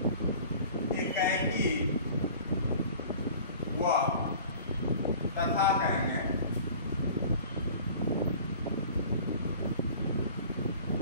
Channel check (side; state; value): both; inverted; correlation -0.45